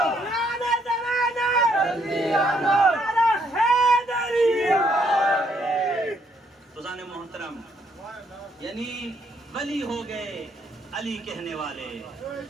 خزان محترم، یعنی ولی ہو گئے علی کہنے والے،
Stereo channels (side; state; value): both; normal; correlation 0.71